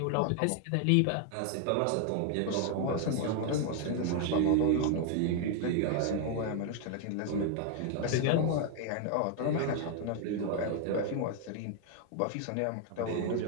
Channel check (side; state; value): both; different; correlation 0.00